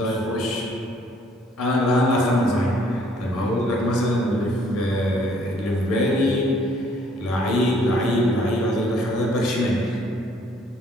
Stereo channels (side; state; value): both; normal; correlation 0.62